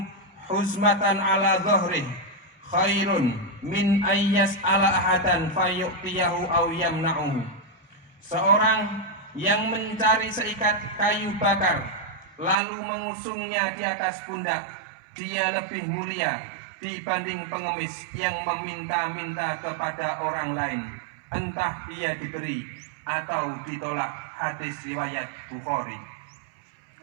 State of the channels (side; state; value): left; drops out; at 12.6 s